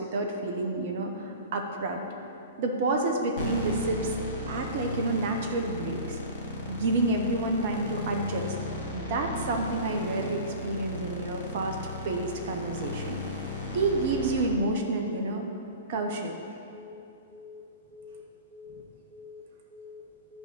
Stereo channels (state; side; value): inverted; both; correlation -0.37